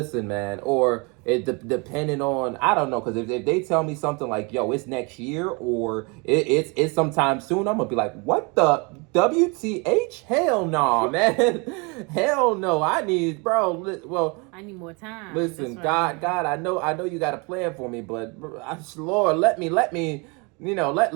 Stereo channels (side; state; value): left; quieter; 30.2 dB